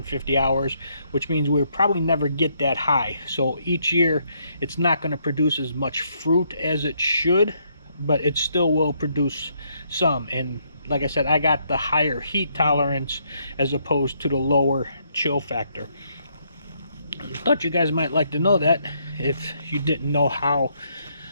hours, which means we'll probably never get that high. So each year it's not going to produce as much fruit as it should, but it still will produce some. And like I said, I got the higher heat tolerance as opposed to the lower chill factor. Thought you guys might like to know that if you didn't know how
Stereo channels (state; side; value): inverted; both; correlation -0.73